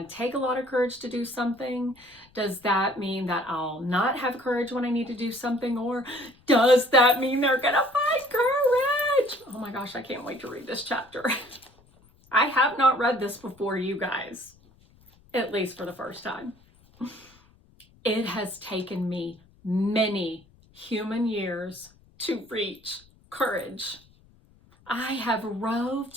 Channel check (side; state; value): left; noise; rumble, 29 dB below the sound